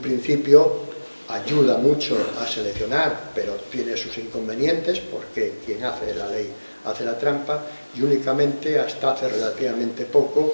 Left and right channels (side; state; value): both; inverted; correlation -1.00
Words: ayuda mucho a seleccionar, pero tiene sus inconvenientes, porque quien hace la ley hace la trampa, y únicamente hasta hace relativamente